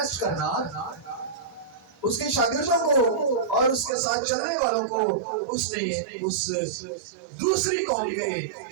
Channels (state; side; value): drops out; left; at 4.0 s